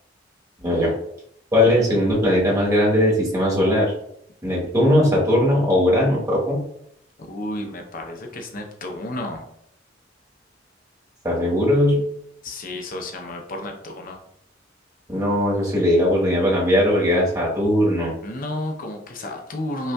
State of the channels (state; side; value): normal; both; correlation 0.56